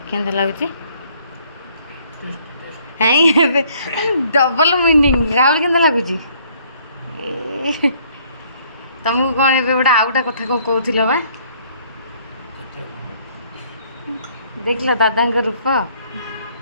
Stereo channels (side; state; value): both; inverted; correlation -0.62